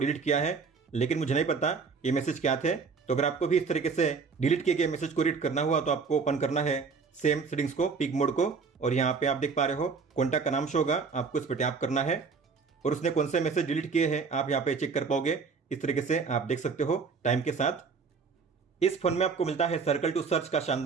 किया है, लेकिन मुझे नहीं पता ये मैसेज क्या थे। तो अगर आपको भी इस तरीके से डिलीट किए गए मैसेज को रीड करना हुआ तो आपको ओपन करना है सेम सेटिंग्स को, पिक मोड को, और यहाँ पे आप देख पा रहे हो कॉन्टैक्ट का नाम शो होगा, आपको इस पर टैप करना है और उसने कौन से मैसेज डिलीट किए हैं आप यहाँ पे चेक कर पाओगे। इस तरीके से आप देख सकते हो टाइम के साथ। इस फोन में आपको मिलता है सर्कल टू सर्च का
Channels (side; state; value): left; quieter; 5.1 dB